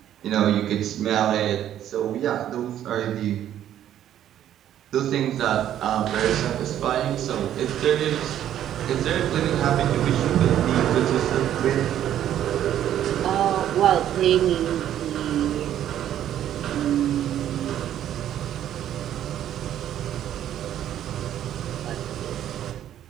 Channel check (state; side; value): quieter; left; 11.2 dB